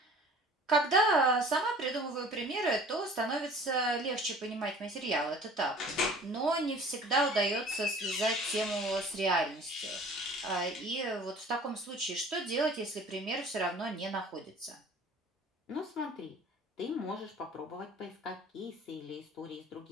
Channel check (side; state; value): both; normal; correlation 0.47